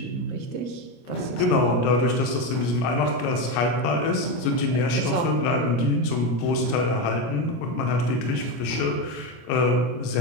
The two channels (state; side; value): late; right; 25 ms